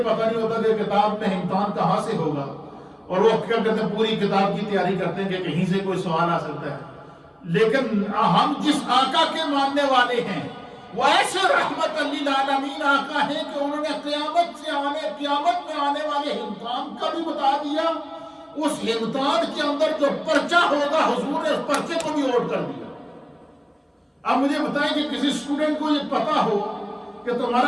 پتہ نہیں ہوتا کہ کتاب میں امتحان کہاں سے ہوگا. اور وہ کیا کرتے ہیں؟ پوری کتاب کی تیاری کرتے ہیں کہ کہیں سے کوئی سوال آ سکتا ہے. لیکن ہم جس آقا کے ماننے والے ہیں وہ ایسے رحمت للعالمین آقا ہیں کہ انہوں نے قیامت میں آنے والے امتحان کا بھی بتا دیا. اس امتحان کے اندر جو پرچہ ہوگا حضور نے اس پرچے کو بھی نوٹ کر دیا. اب مجھے بتائیں کہ کسی اسٹوڈنٹ کو یہ پتا ہو کہ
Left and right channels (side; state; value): both; identical; correlation 1.00